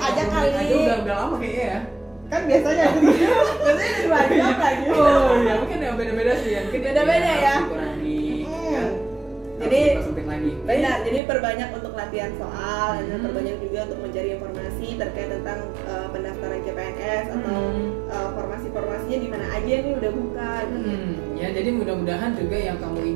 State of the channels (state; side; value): drops out; left; at 11.2 s